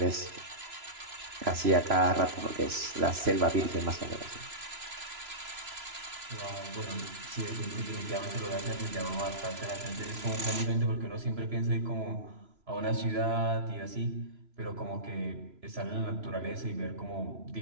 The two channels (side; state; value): left; late; 3.0 ms